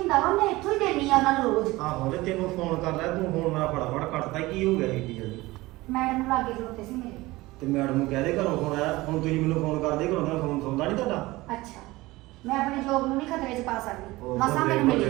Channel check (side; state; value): left; quieter; 20.0 dB